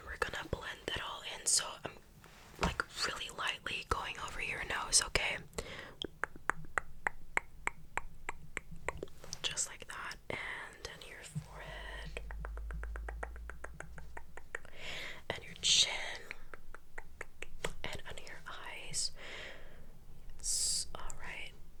we're gonna blend that all in, so I'm like really lightly going over your nose, okay? Just like that, and then your forehead and your chin and under your eyes. Yes, alright.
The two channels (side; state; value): both; identical; correlation 1.00